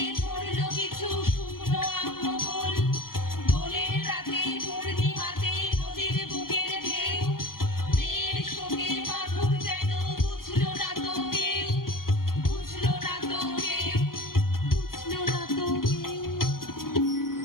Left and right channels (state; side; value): late; right; 0.92 ms